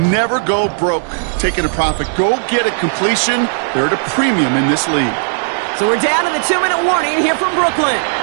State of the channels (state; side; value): silent; left; digital silence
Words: never go broke taking a profit. Go get a completion. They're at a premium in this league. So we're down to the 2-minute warning here from Brooklyn.